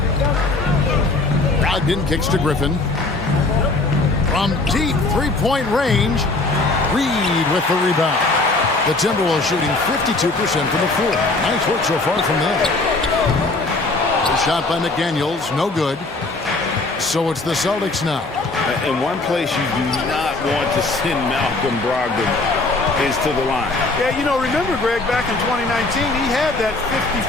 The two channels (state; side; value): quieter; right; 3.3 dB